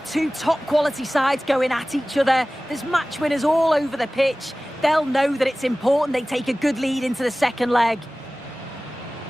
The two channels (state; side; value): normal; both; correlation 0.98